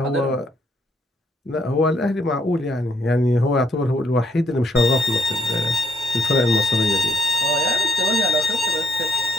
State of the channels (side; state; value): both; normal; correlation 0.70